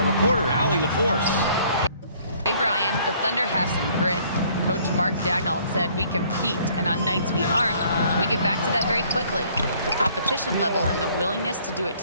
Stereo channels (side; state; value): both; inverted; correlation -0.60